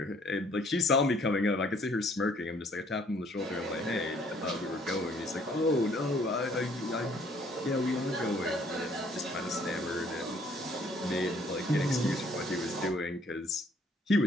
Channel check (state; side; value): normal; both; correlation 0.61